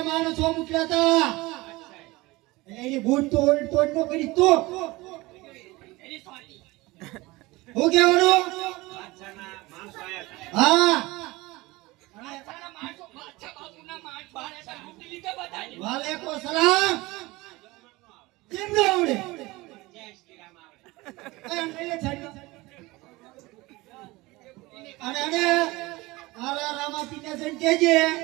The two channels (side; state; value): left; quieter; 21.4 dB